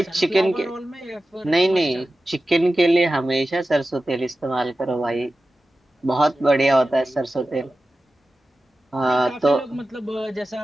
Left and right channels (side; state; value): both; normal; correlation 0.94